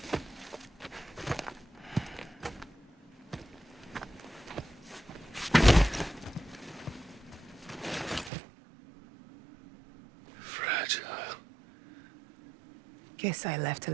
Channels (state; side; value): drops out; left; at 8.3 s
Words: Guess I left a